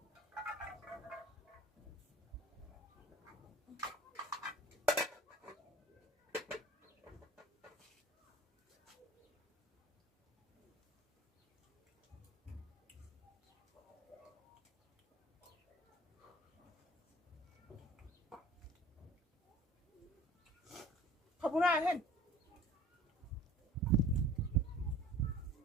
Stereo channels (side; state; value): both; normal; correlation 0.46